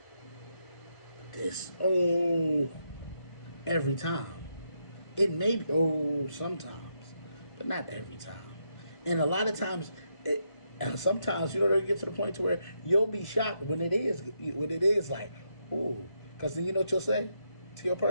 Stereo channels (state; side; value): late; right; 1.5 ms